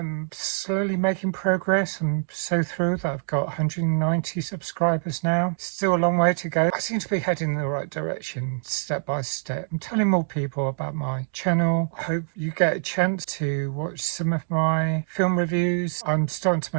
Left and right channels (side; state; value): left; silent; digital silence